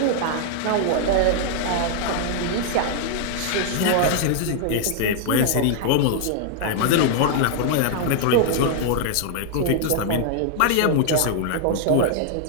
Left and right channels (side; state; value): both; different; correlation -0.01